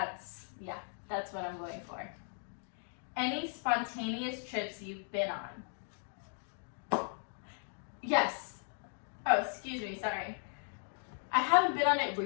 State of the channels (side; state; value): right; silent; 53 dB below the other